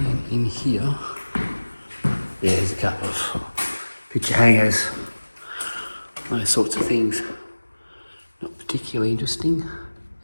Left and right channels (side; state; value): both; inverted; correlation -1.00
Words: in here, yeah, there's a couple of picture hangers, those sorts of things. Not particularly interesting.